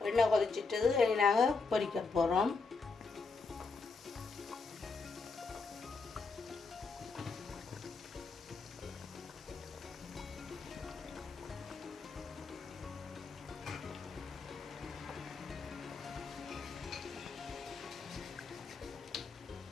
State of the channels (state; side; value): quieter; right; 4.3 dB